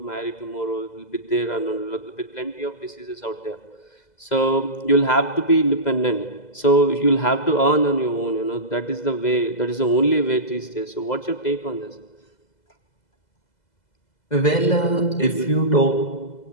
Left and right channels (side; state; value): right; late; 2.0 ms